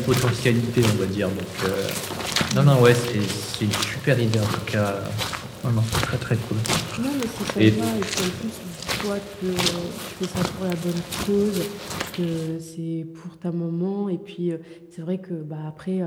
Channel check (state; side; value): identical; both; correlation 1.00